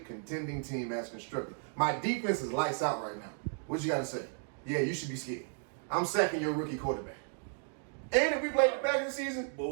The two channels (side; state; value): left; silent; 55 dB below the other